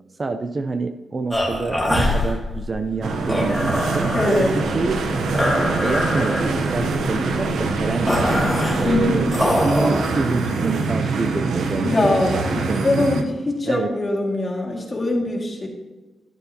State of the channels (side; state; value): both; normal; correlation 0.84